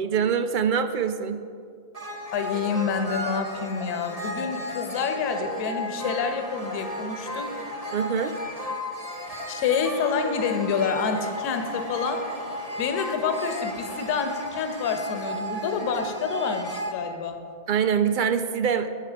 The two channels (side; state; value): left; late; 1.7 ms